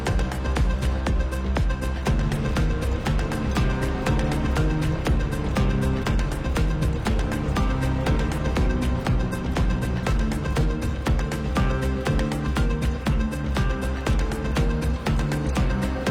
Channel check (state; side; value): identical; both; correlation 1.00